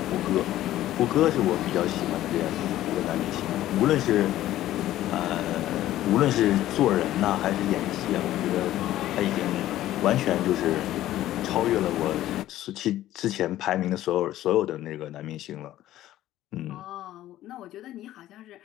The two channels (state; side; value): quieter; right; 14.0 dB